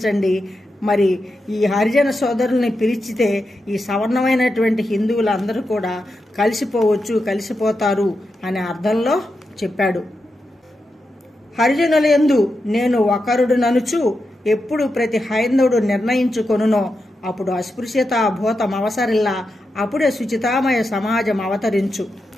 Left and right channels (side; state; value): both; normal; correlation 0.88